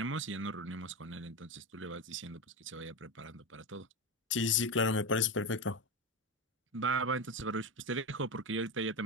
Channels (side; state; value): both; normal; correlation 0.17